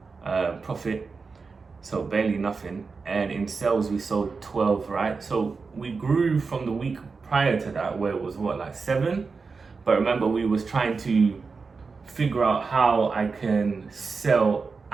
profit, so barely nothing. And in sales we sold 12, right? So we grew from the week prior to that, where it was 7. But remember, we was trying to figure out how I can sell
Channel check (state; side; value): quieter; left; 4.7 dB